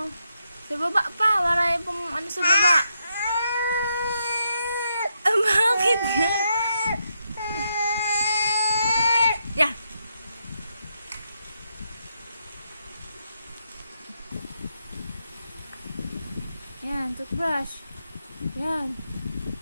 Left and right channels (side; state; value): both; inverted; correlation -0.81